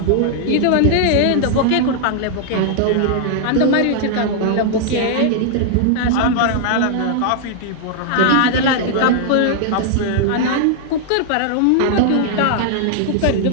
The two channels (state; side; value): different; both; correlation -0.01